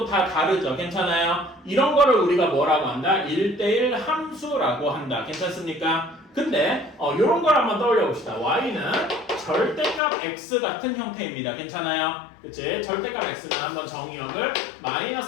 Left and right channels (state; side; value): drops out; right; at 10.0 s